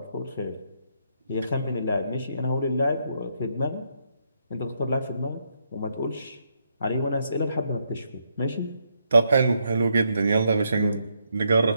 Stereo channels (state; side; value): inverted; both; correlation -0.77